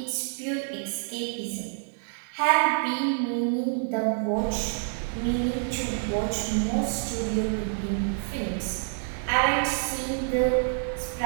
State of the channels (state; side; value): silent; left; digital silence